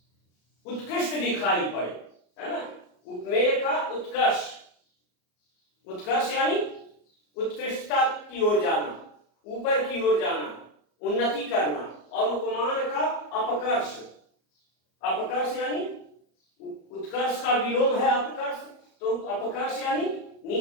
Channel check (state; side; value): late; right; 34 ms